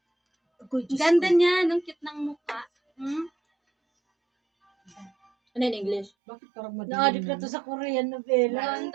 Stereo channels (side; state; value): left; drops out; at 6.1 s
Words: Ganda niya, nung cute ng mukha. Ano in English? Bakit parang madilim? Naadip na to sa Korean novela. Ganda